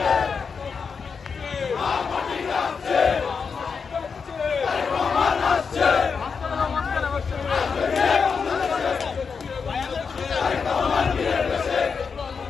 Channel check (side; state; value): right; quieter; 5.6 dB